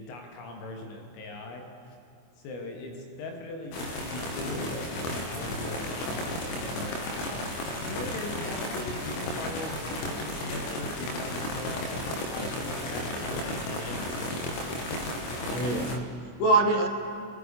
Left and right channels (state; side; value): late; right; 25 ms